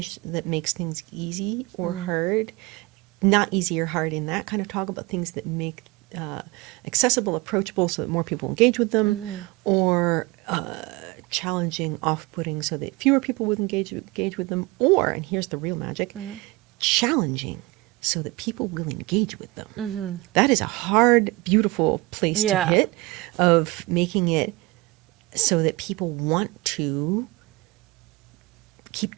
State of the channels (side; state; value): left; quieter; 22.6 dB